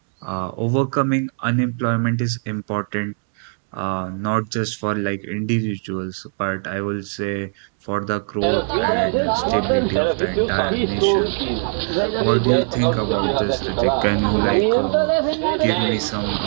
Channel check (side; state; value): left; silent; 58 dB below the other